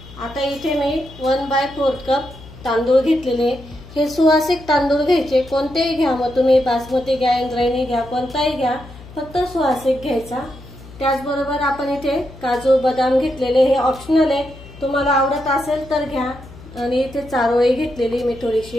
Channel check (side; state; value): left; noise; hum, 18 dB below the sound